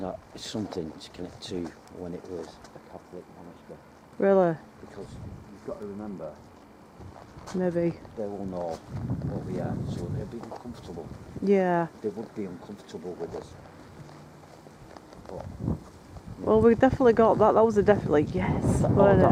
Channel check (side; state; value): both; identical; correlation 1.00